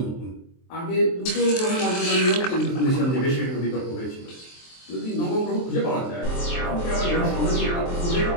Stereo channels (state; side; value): late; right; 23 ms